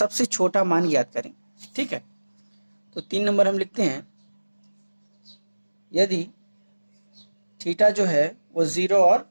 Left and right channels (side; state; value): both; inverted; correlation -1.00